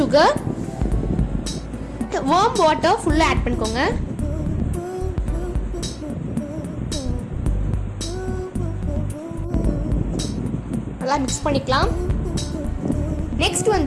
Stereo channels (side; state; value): both; identical; correlation 1.00